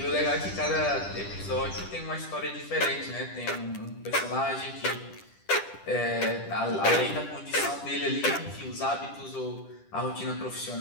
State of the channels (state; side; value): late; right; 10 ms